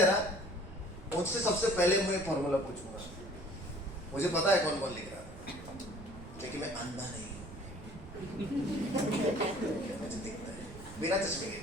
ना, मुझसे सबसे पहले मैं फॉर्मूला पूछूंगा। मुझे पता है कौन कौन लिख रहा था, लेकिन मैं अंधा नहीं हूं। मुझे दिखता है बिना चश्मे के,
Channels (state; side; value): noise; right; rumble, 15 dB below the sound